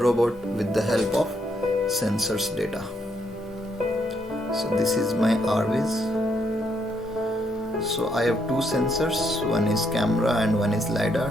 with the help of sensors data. So this is my RViz. So I have two sensors, one is camera and one is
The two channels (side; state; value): both; normal; correlation 0.75